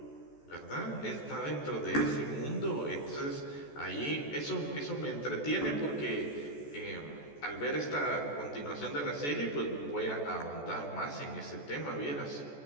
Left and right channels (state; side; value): late; right; 14 ms